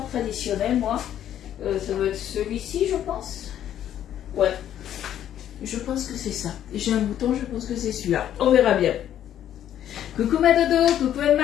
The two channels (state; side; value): quieter; right; 10.9 dB